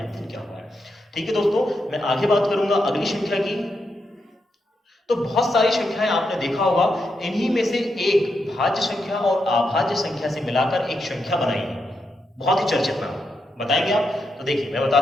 अध्ययन किया हुआ है। ठीक है दोस्तों, मैं आगे बात करूंगा अगली संख्या की। तो बहुत सारी संख्याएं आपने देखा होगा, इन्हीं में से एक भाज्य संख्या और अभाज्य संख्या से मिलाकर एक संख्या बनाई है, बहुत ही चर्चित नाम। बताएंगे आप? तो देखिए मैं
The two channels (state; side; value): normal; both; correlation 0.83